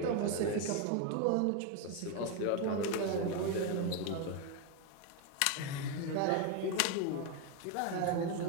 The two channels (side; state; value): both; different; correlation 0.02